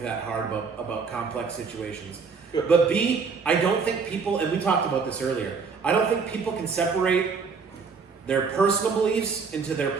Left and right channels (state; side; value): quieter; left; 5.2 dB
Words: that hard about complex situations. But B, I don't think people, and we talked about this earlier, I don't think people can separate their personal beliefs into their